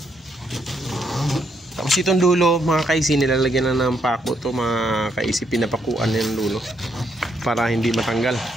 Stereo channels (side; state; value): both; normal; correlation 0.75